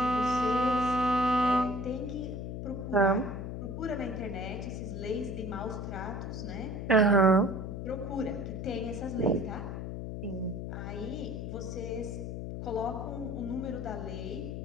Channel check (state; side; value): noise; left; hum, 5 dB below the sound